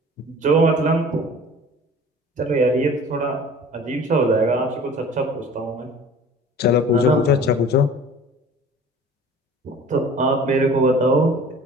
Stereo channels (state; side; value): normal; both; correlation 0.45